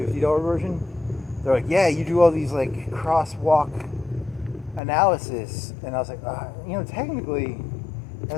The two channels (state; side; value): drops out; right; at 4.8 s